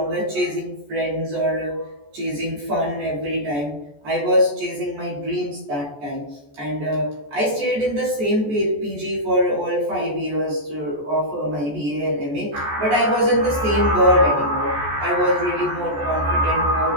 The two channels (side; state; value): left; late; 14 ms